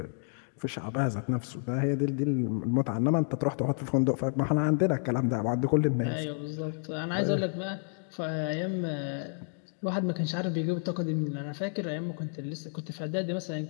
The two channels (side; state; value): right; silent; 58 dB below the other